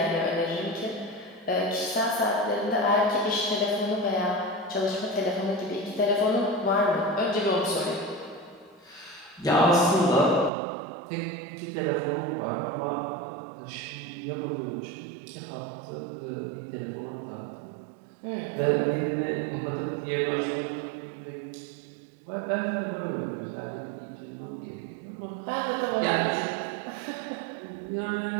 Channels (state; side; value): drops out; left; at 10.5 s